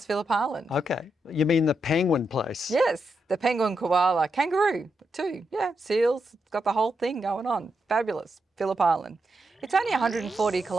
Phillip Island. Okay. You mean the penguin place? Yes, the penguin, koala, kangaroo too. Yeah, seals, it's got the whole thing going on. Fabulous, Phillip Island. It's only 140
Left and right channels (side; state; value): both; normal; correlation 0.84